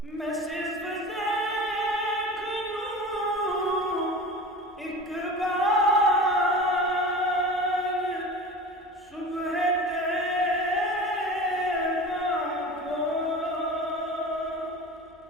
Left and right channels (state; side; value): normal; both; correlation 0.35